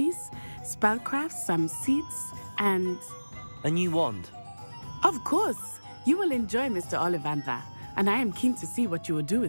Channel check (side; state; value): both; inverted; correlation -1.00